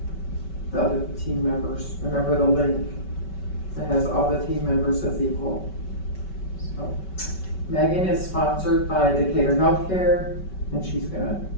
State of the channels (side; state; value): right; late; 5.3 ms